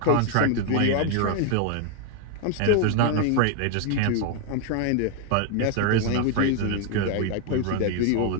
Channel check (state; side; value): different; both; correlation 0.01